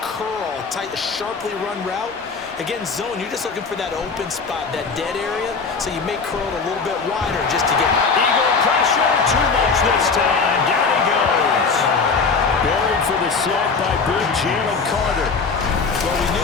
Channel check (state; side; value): quieter; right; 4.8 dB